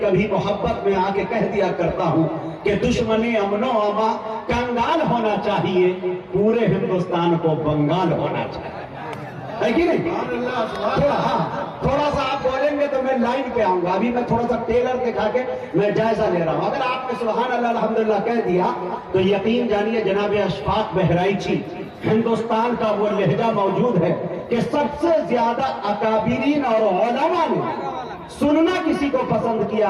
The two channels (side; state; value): both; identical; correlation 1.00